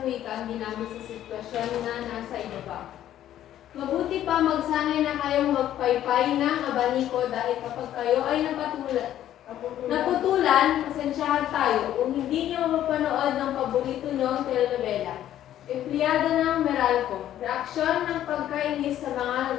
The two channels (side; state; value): right; quieter; 11.9 dB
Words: wika ang ginamit sa sitwasyon na nasa ibaba? Mabuti pa magsanay na kayong magpaypay ng abaniko dahil kapag kayo ay naputulan, pasensyahan tayo kung hindi nyo mapanood ng paborito nyong telenovela. Empleyado ng Meralco, reaksyon ng pagkainis sa mga